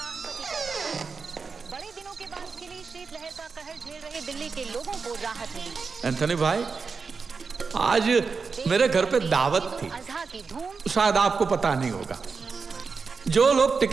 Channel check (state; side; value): quieter; left; 5.0 dB